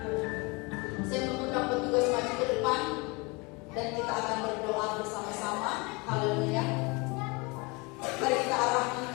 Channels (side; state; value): right; quieter; 27.7 dB